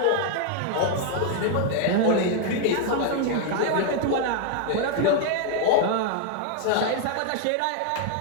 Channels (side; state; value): both; different; correlation 0.00